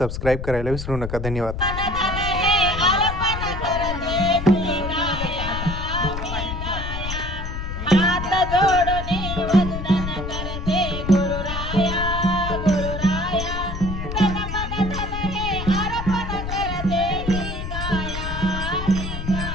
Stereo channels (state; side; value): noise; left; rumble, 5 dB below the sound